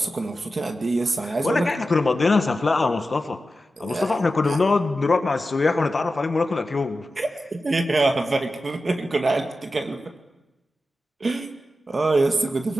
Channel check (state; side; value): normal; both; correlation 0.92